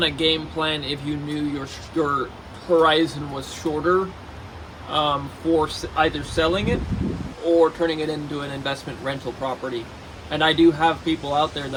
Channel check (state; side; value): identical; both; correlation 1.00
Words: a game plan if you knew your horizon was shorter, for either selling it or turning it into an investment rental property. And I do have people out there